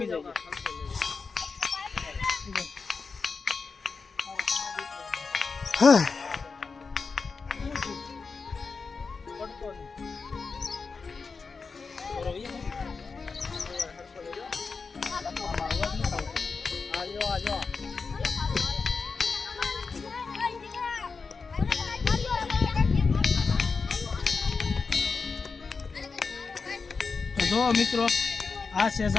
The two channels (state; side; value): quieter; right; 4.7 dB